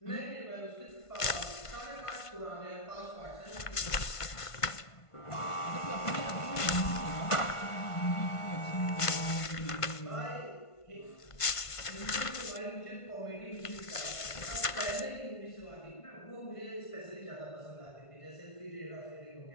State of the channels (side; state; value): right; late; 1.5 ms